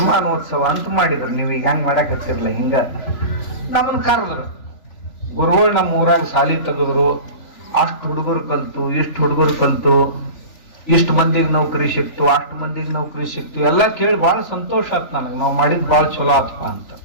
ಅಂತ ಮಾಡಿದ್ರು. ನೀವು ಈಗ ಹೆಂಗ್ ಮಾಡಕ್ ಹತ್ತಿರ್ಲ, ಹಿಂಗ ನಮ್ಮನ್ ಕರೆದ್ರು. ಗುರುಗಳು ನಮ್ಮ ಊರಾಗ ಸಾಲಿ ತೆಗೆದ್ರು. ಅಷ್ಟು ಹುಡುಗರು ಕಲ್ತು, ಇಷ್ಟು ಹುಡುಗರು ಕಲ್ತು, ಇಷ್ಟು ಮಂದಿಗೆ ನೌಕರಿ ಸಿಕ್ತು, ಅಷ್ಟು ಮಂದಿಗೆ ನೌಕರಿ ಸಿಕ್ತು. ಎಲ್ಲ ಕೇಳಿ ಬಹಳ ಸಂತೋಷ ಆಯ್ತು ನನಗೆ. ನಾವು ಮಾಡಿದ್ ಬಹಳ ಚಲೋ ಆತ್ಪ ಅಂತ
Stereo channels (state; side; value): late; right; 3.4 ms